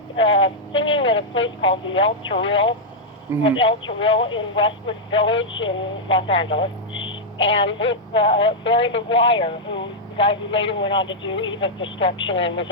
singing at a place called the El Toril, El Toril in Westwood Village in Los Angeles, and with Barry McGuire, the guy who later went on to do Eve of Destruction and was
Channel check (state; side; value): normal; both; correlation -0.04